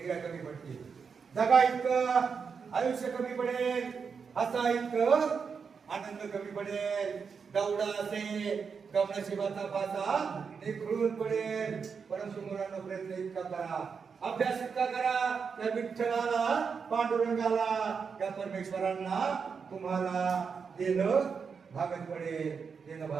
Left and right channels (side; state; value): left; quieter; 5.9 dB